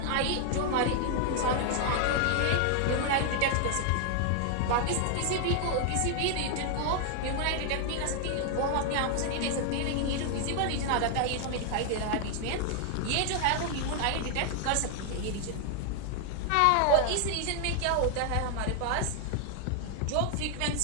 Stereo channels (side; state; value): both; different; correlation 0.00